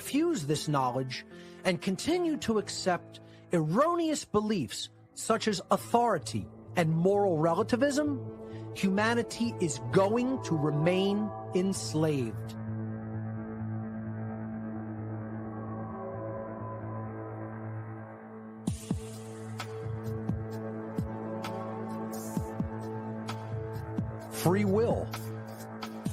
this knowledge and continue to accept erroneous beliefs such as authority and moral relativism, humanity is going to remain enslaved. Free will.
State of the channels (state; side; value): identical; both; correlation 1.00